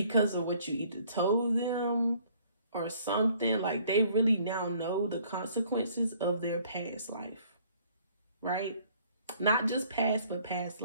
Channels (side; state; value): both; inverted; correlation -0.59